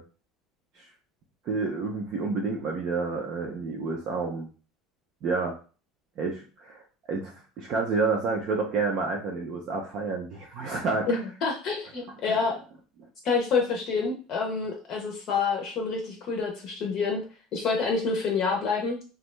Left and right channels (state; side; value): normal; both; correlation 0.37